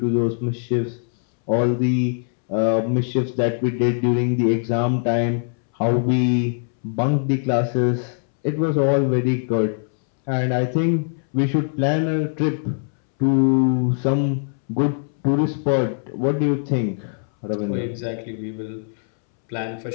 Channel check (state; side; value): silent; right; 64 dB below the other